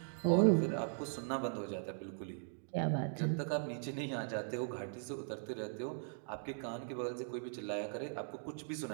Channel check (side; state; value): left; silent; digital silence